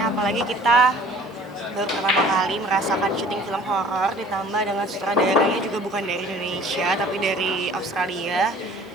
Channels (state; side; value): normal; both; correlation 0.50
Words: apalagi kita baru pertama kali merasakan syuting film horor, ditambah dengan sutradaranya juga bukan dari Indonesia tapi dari Australia.